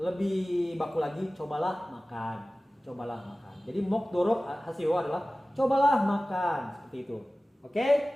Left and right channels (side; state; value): both; normal; correlation 0.97